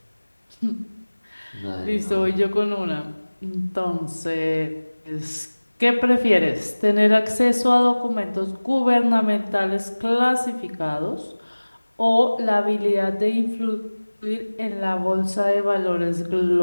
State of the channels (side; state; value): both; inverted; correlation -1.00